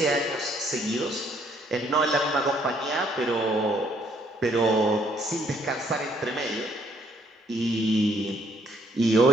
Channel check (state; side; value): normal; both; correlation 0.67